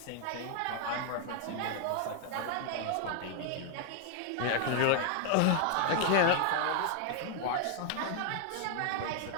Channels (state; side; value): different; both; correlation 0.00